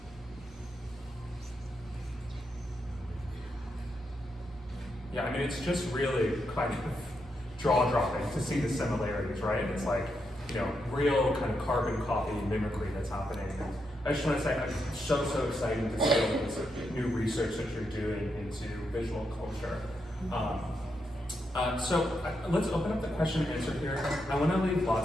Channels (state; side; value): normal; both; correlation 0.82